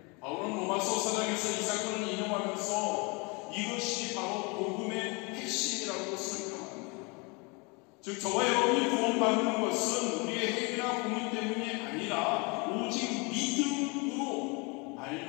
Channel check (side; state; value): right; quieter; 29.8 dB